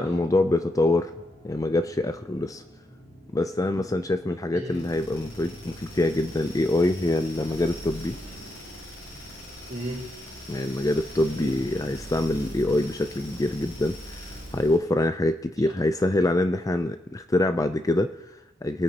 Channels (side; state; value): both; normal; correlation 0.82